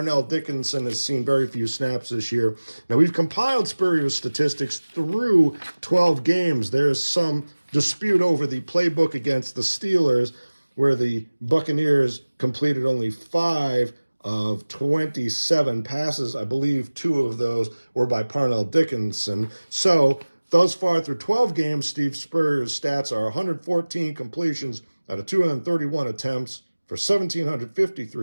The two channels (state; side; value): inverted; both; correlation -1.00